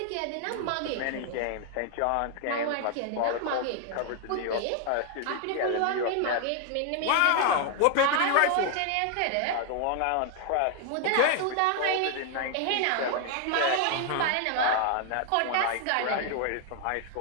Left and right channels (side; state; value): both; different; correlation 0.00